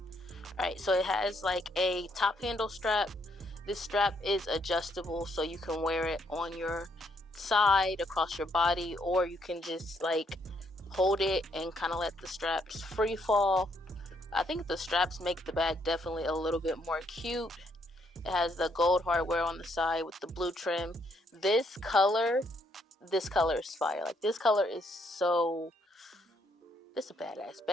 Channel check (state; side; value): normal; both; correlation 0.72